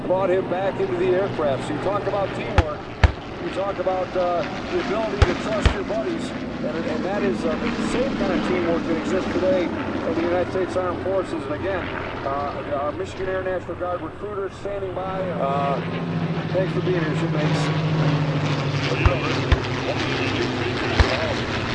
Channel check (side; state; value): both; identical; correlation 1.00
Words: brought him back into the aircraft. So you talk about teamwork. You talk about the ability to trust your buddies, and that is the same kind of teamwork that exists today in the United States Armed Forces. And again, our Michigan Air National Guard recruiters standing by. Thanks for being here, shipmates. Well, you know,